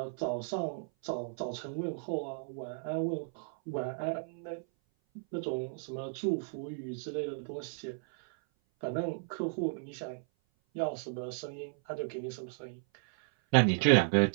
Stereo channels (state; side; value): silent; left; 55 dB below the other